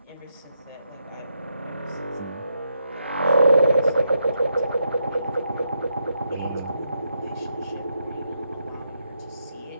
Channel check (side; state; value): both; inverted; correlation -0.80